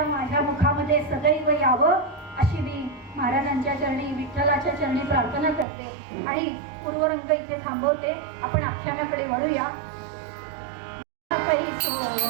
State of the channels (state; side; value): drops out; left; at 5.7 s